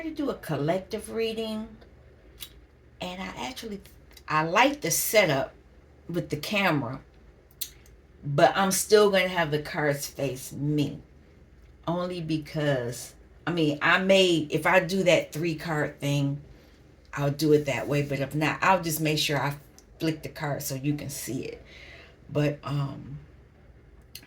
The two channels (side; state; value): both; identical; correlation 1.00